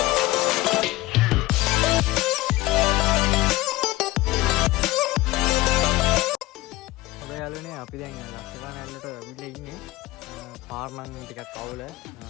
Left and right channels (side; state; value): right; quieter; 18.3 dB